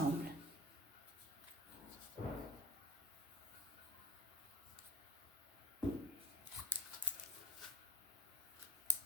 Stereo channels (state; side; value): normal; both; correlation 0.28